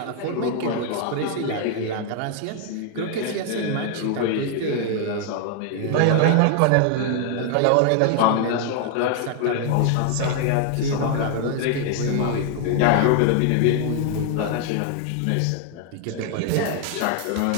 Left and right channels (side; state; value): both; different; correlation 0.00